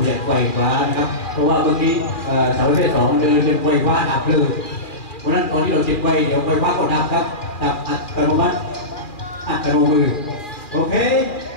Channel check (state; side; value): late; right; 2.4 ms